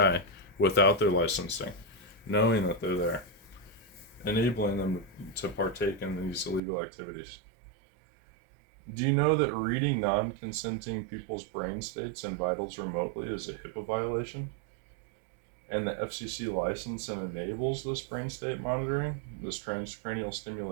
without their licensing, knowing that they're there, enabling them to partake in these illegal activities? Do you know that reading non-consenting people's brain states and vitals remotely is a HIPAA violation? And the FCC license and enables this brain state monitoring, this transcranial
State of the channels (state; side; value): drops out; left; at 6.6 s